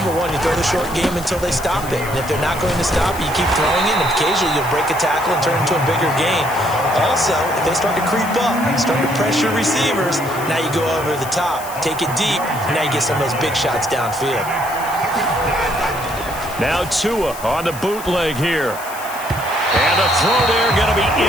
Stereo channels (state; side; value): noise; left; hiss, 14 dB below the sound